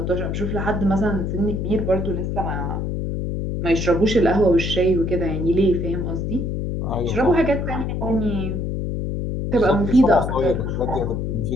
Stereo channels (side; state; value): left; noise; hum, 2 dB below the sound